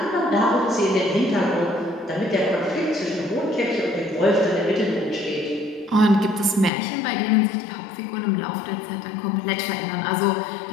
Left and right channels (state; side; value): drops out; right; at 6.7 s